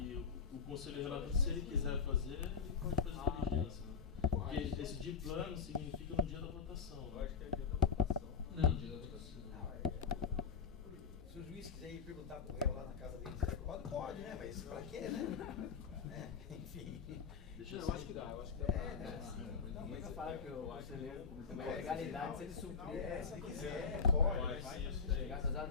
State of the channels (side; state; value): right; quieter; 5.8 dB